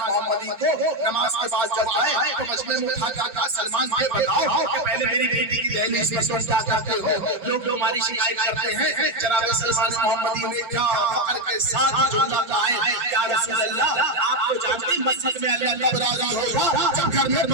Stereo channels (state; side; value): late; left; 5.8 ms